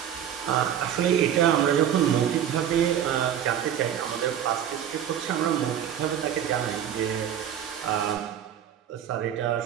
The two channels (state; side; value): quieter; left; 9.7 dB